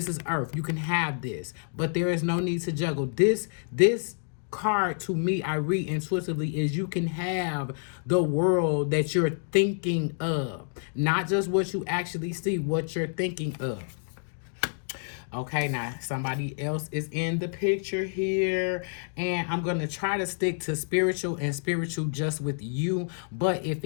is Earth. You can have this, but there is no need to juggle. This card, to me, I read intuitively, is you can have the world that you're thinking of, not just what you actually see, what you're thinking of. Okay, now somebody else is in the picture here, and I'm going to try to stick to spiritual and spiritual just with you, but if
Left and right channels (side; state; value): right; silent; digital silence